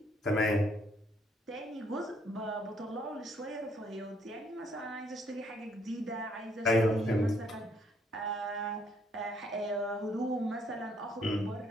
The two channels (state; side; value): normal; both; correlation 0.68